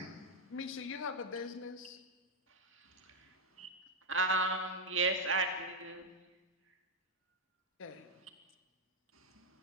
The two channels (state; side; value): normal; both; correlation -0.01